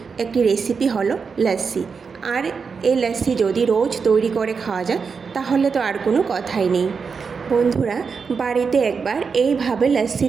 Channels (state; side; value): quieter; left; 5.5 dB